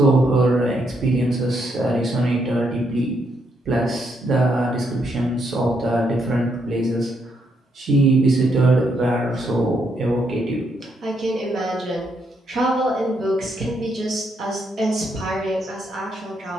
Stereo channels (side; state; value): both; normal; correlation 0.77